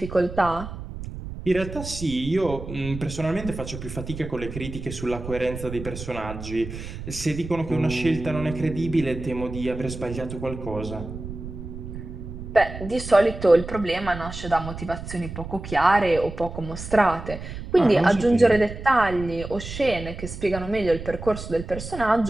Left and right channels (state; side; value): noise; right; rumble, 10 dB below the sound